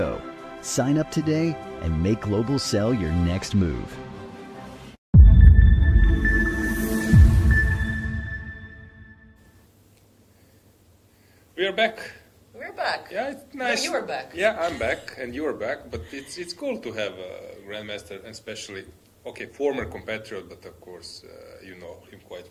Sign up today and make Global Cell your next move. We are back. We're back. Yeah, it's nice. No, you are back. Yeah, I'm back, and you are back. But it's cool to have a grandmaster, and especially, former competitor, but of course you know him quite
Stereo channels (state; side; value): identical; both; correlation 1.00